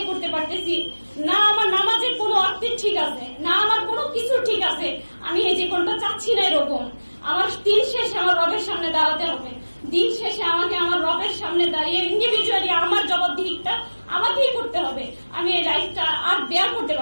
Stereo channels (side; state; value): both; inverted; correlation -1.00